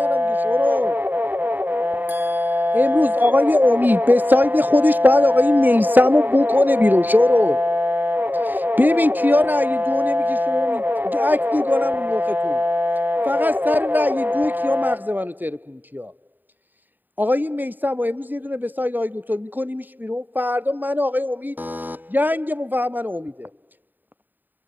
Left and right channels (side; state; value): left; late; 0.089 ms